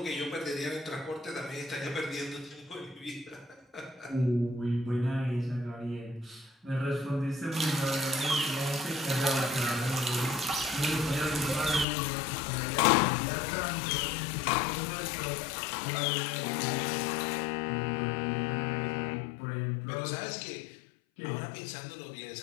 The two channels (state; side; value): drops out; right; at 11.9 s